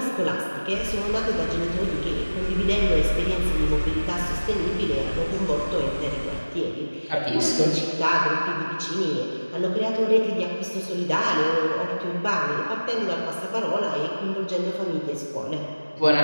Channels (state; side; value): inverted; both; correlation -1.00